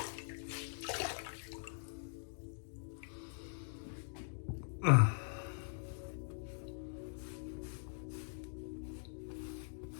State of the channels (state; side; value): silent; right; digital silence